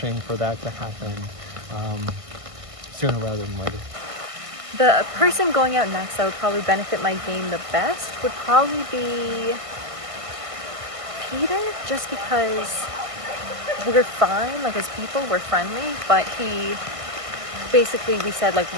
for that to happen sooner rather than later. The person going out next that would probably benefit my game the best would probably be Peter, just because we're fine, like as people, we're friendly, but he basically, we said like,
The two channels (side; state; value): left; late; 1.5 ms